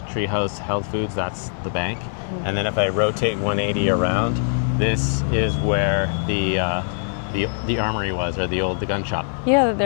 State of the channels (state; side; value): silent; right; digital silence